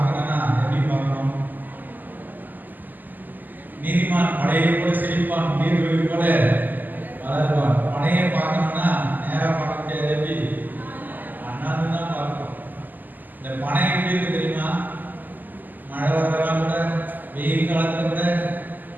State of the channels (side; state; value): left; late; 0.086 ms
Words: எப்படி பார்க்கணும்? நீதிமான் மழையை போல செழிப்பான், நீர்வழி போல வளருவான். மழையை பார்க்கணும்னா நேரா பார்க்க முடியாது, எப்படி அண்ணாந்து தான் பார்க்கணும். இந்த பனை எப்படி இருக்கு தெரியுமா? மழை வரலாம் கூட, வெயில் காலத்துல கூட